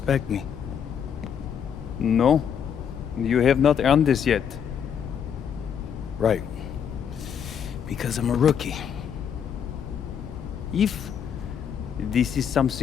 me. No, you have not earned this yet. Right. Because I'm a rookie. If this is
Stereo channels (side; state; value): right; quieter; 8.0 dB